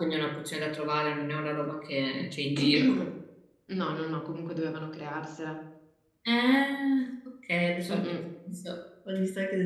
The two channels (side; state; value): both; identical; correlation 1.00